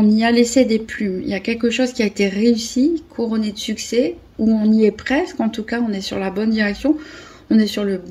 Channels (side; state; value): both; identical; correlation 1.00